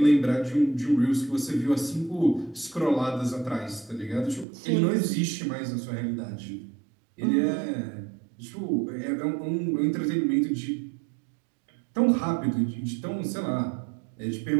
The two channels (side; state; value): left; drops out; at 4.5 s